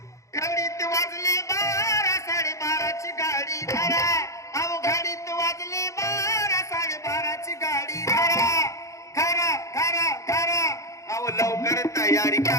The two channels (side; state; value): right; late; 0.15 ms